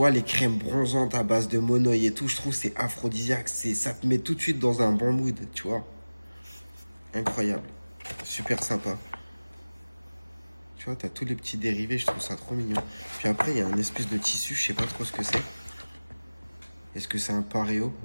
les crèmes bronzantes à base de monoï et tout, je trouve que c'est aphrodisiaque. Ça te met tout de suite dans un bon mood, tu vois. Incroyable. Super sympa. Tu vois, t'as tous les petits dérivés, je trouve ça trop mignon. Puis après, il y a un espèce de tissu, je sais pas trop ce que c'est. Est-ce que c'est un pareo?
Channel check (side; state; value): both; inverted; correlation -1.00